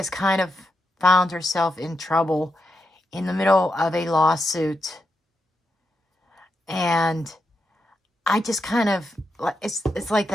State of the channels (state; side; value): normal; both; correlation 0.86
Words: kind of found herself in trouble in the middle of a lawsuit. And I just kind of, it's like